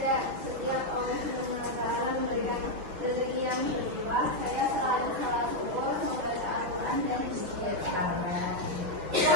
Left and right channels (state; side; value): late; left; 5.8 ms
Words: orang Subhanahu wa Ta'ala memberikan rezeki yang berlimpah, saya selalu salat syukur, membaca Al-Quran dan istighfar.